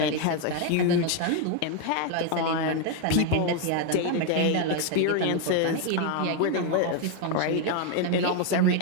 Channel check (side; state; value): both; different; correlation 0.01